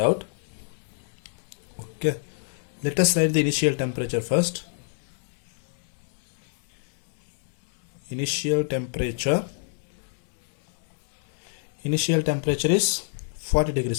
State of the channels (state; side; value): silent; right; digital silence